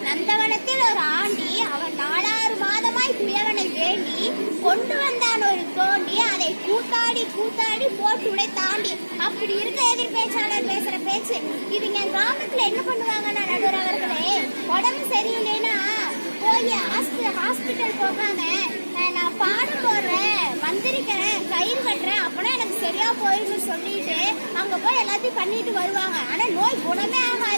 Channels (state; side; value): inverted; both; correlation -1.00